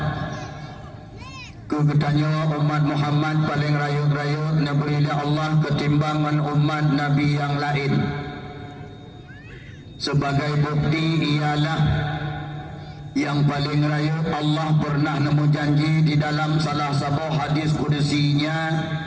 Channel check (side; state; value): both; identical; correlation 1.00